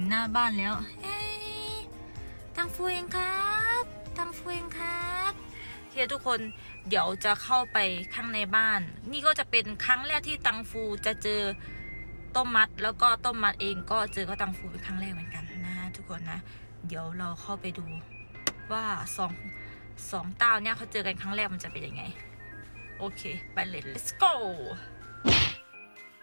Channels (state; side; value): inverted; both; correlation -1.00